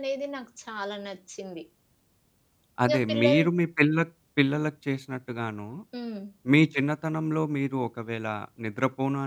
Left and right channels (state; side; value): identical; both; correlation 1.00